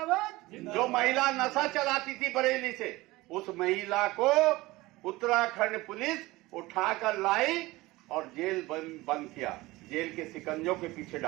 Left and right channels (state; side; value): quieter; left; 20.0 dB